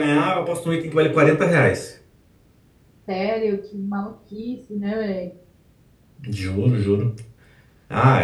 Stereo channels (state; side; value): identical; both; correlation 1.00